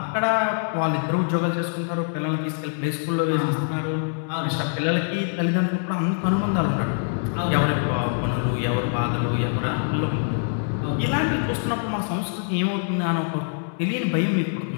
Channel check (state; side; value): silent; right; digital silence